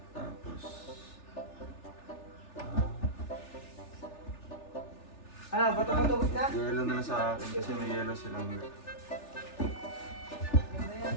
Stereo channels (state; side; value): late; right; 3.4 ms